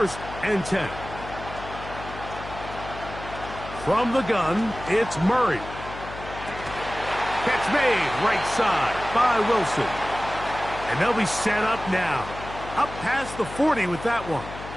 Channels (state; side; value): noise; left; hum, 12 dB below the sound